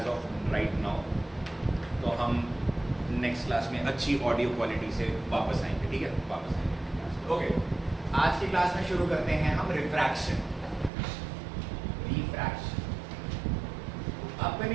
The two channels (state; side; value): drops out; left; at 10.9 s